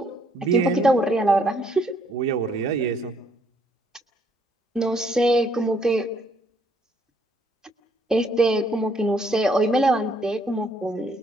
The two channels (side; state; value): both; normal; correlation 0.68